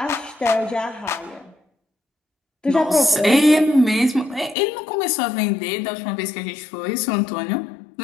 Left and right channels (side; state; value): right; drops out; at 4.5 s